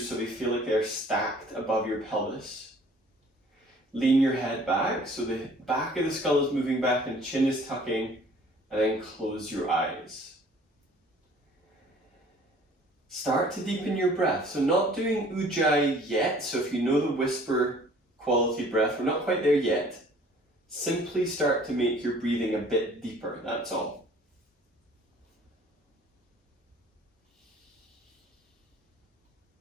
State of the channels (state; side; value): normal; both; correlation 0.53